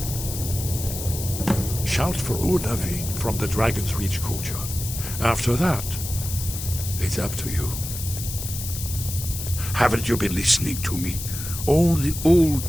Shout for Udaving from the Dragon's Reach courtyard. After that, it's up to you. Haven't you been listening to me? All the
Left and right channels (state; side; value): noise; left; hiss, 7 dB below the sound